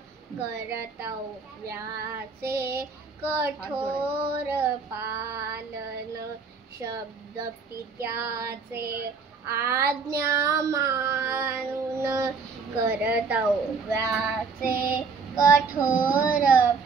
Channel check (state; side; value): quieter; left; 4.9 dB